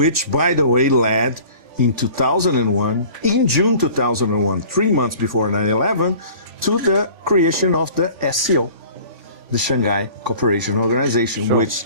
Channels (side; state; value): left; late; 3.5 ms